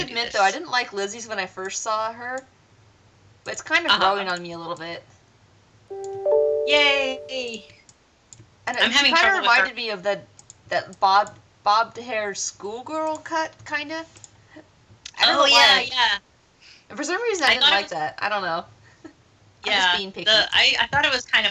though, I didn't like Lizzie's when I first saw her, but it's kind of growing on me a little bit. Yay! And it kind of reminded me of that bobbed hair schoolgirl cut, kind of. Yeah. And for some reason, I didn't like that. I don't know. Yeah, I'm just being picky. I thought it was kind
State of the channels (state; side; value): identical; both; correlation 1.00